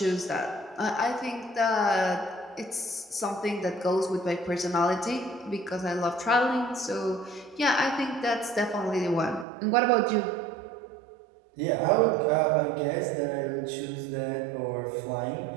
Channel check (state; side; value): drops out; left; at 9.5 s